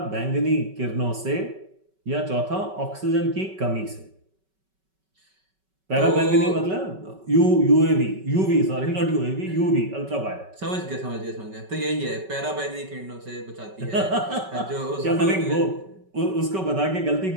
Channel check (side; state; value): left; late; 5.3 ms